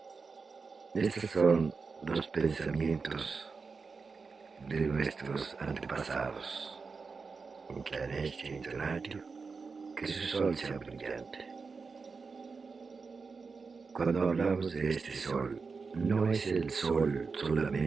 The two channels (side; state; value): left; quieter; 4.7 dB